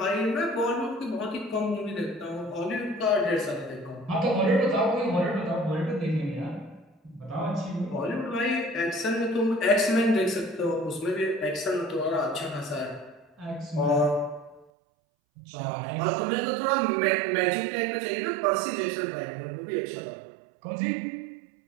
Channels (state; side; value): drops out; left; at 14.7 s